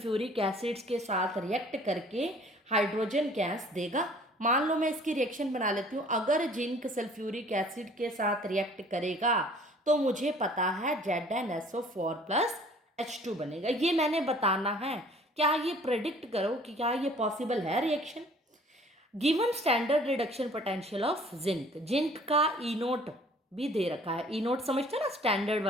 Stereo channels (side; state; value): both; normal; correlation 0.53